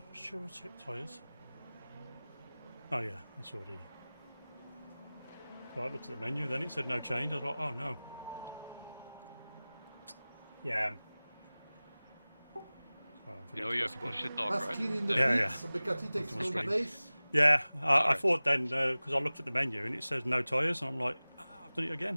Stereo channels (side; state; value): both; inverted; correlation -0.99